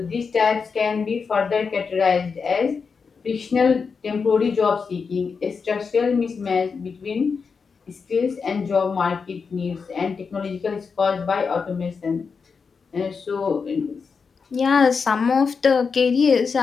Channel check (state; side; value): quieter; right; 5.4 dB